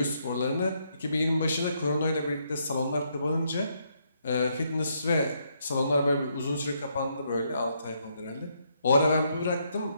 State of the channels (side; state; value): both; inverted; correlation -0.75